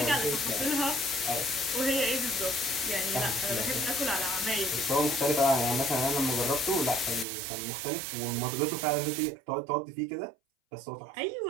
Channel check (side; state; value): left; drops out; at 7.2 s